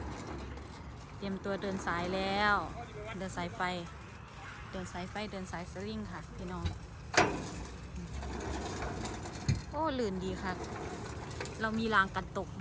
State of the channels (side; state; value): both; identical; correlation 1.00